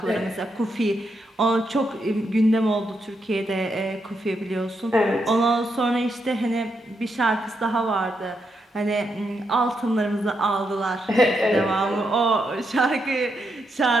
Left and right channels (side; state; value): both; normal; correlation 0.82